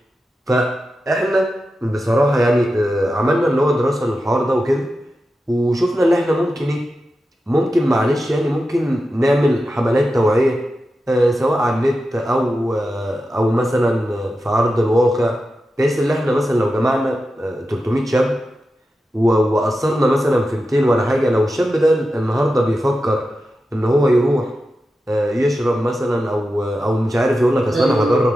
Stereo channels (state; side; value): normal; both; correlation 0.91